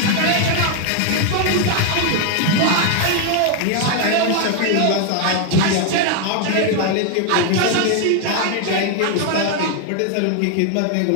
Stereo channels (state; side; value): different; both; correlation 0.01